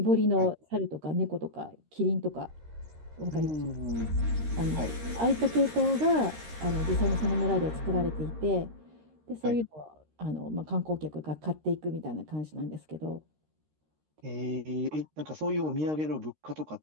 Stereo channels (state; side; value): late; left; 13 ms